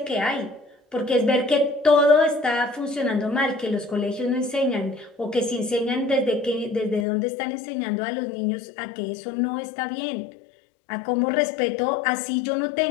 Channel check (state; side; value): drops out; right; at 7.1 s